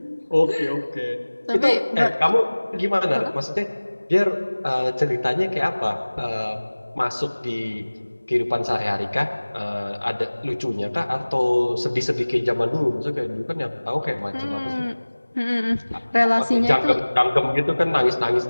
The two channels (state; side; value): inverted; both; correlation -1.00